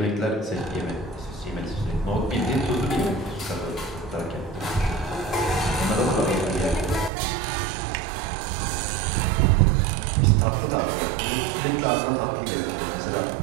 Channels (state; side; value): drops out; left; at 7.1 s